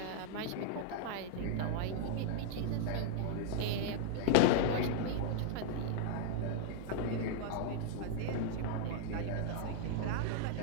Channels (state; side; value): different; both; correlation -0.01